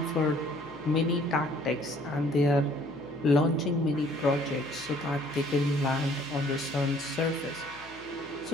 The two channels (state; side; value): noise; left; hum, 22 dB below the sound